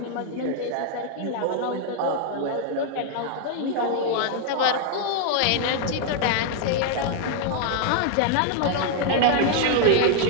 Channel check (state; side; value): different; both; correlation 0.00